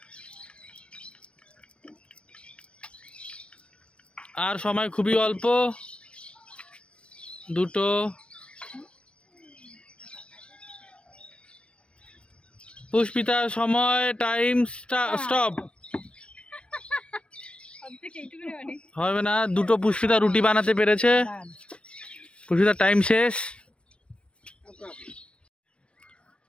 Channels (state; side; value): late; right; 0.059 ms